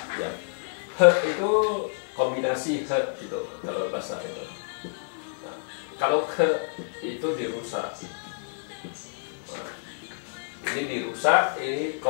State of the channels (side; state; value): right; silent; digital silence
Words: ya. He itu kombinasi he gitu kalau bahasa itu. Nah, kalau ke itu dirusak. Nah, ini dirusak, ini